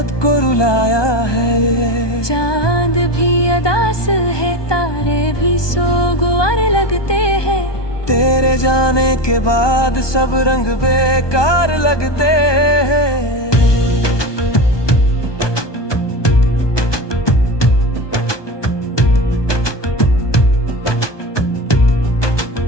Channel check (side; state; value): right; late; 1.2 ms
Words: को रुलाया है। चांद भी अदास है, तारे भी सोगवार लगते हैं, तेरे जाने के बाद सब रंग बेकार लगते हैं।